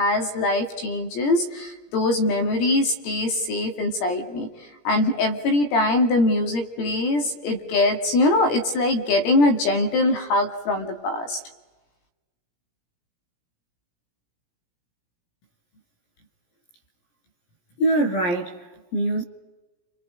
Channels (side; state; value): right; late; 17 ms